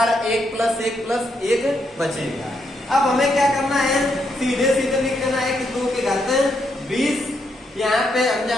1 प्लस 1 प्लस 1 बचेगा। अब हमें क्या करना है, सीधे सीधे लिख देना है कि 2 के घाते 20। यहाँ पे हम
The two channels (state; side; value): normal; both; correlation 0.78